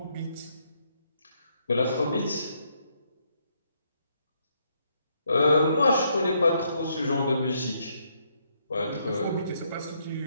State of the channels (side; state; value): both; inverted; correlation -0.74